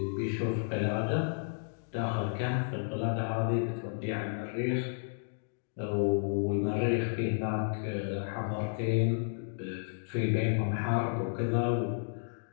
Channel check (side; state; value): right; silent; digital silence